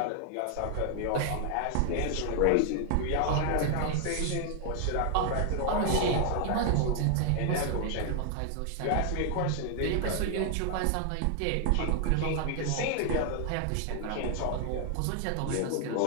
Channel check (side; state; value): both; different; correlation 0.00